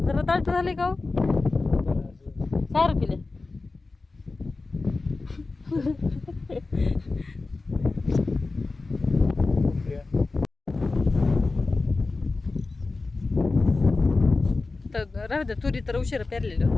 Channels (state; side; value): quieter; right; 3.6 dB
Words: जरा दाट झाले का सारं पिले. तर राहू द्या, तुरी तर उशिरा पेरलेली